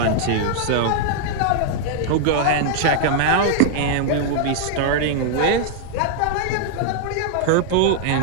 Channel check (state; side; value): different; both; correlation -0.01